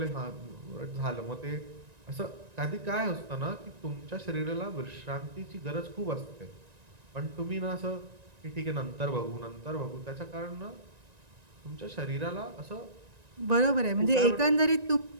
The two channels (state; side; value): late; left; 1.9 ms